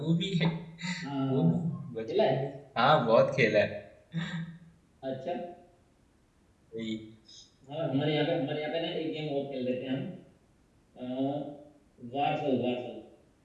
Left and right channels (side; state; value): both; identical; correlation 1.00